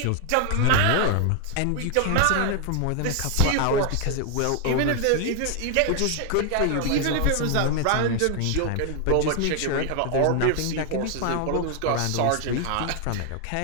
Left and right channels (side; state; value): both; different; correlation 0.01